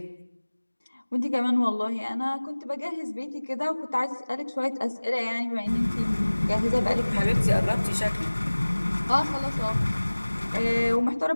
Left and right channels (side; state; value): both; inverted; correlation -1.00